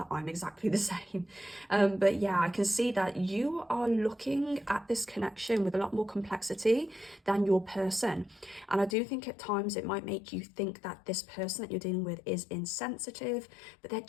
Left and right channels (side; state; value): right; drops out; at 9.0 s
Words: I'm exactly the same. But yeah, I can see that you are looking at this connection with a lot more complexity than your person, and I do think at times it might make you think that this person that you're dealing with is insensitive, but they're